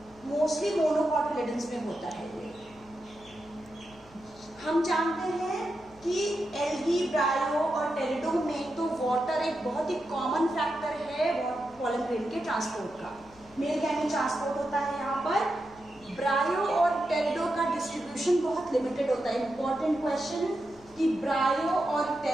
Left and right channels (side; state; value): left; noise; hum, 25 dB below the sound